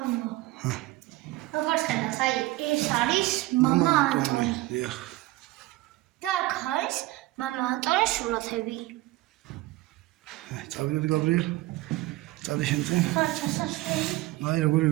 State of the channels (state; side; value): quieter; left; 18.4 dB